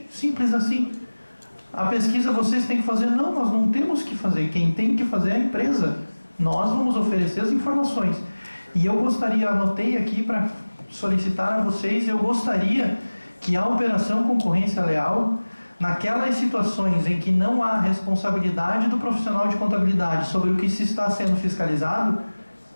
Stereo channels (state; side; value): inverted; both; correlation -1.00